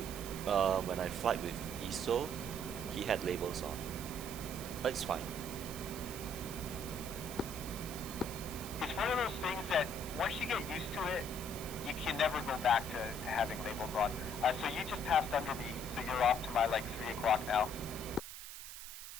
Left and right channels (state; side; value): noise; right; hiss, 10 dB below the sound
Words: when I flight with ISO, he had labels on, but it's fine. It's one of those things that once you get used to it, you can never go back to having labels on. So you just passed under me, so you're off to my like 3 o'clock now.